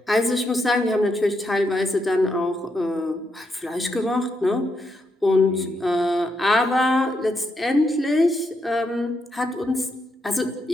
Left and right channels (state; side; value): normal; both; correlation 0.80